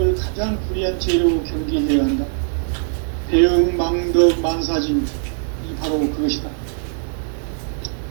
가장 불의한 죄로 경계해야 한다. 배은 망덕 만사짐이 바로 그것이다.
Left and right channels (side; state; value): left; silent; digital silence